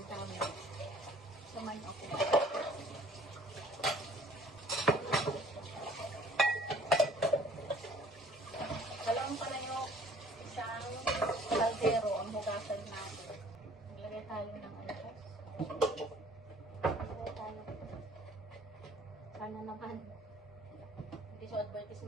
mo. Samayin ako. Dalawang pala yung isang kaldero ang hugasan natin. Maglagay tayo ng alpas. Maglagay tayo. Sana naman. Hindi siya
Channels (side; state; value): both; normal; correlation 0.55